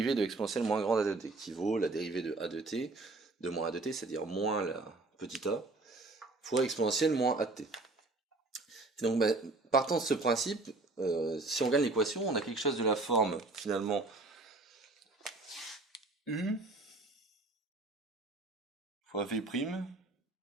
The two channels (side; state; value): left; quieter; 3.2 dB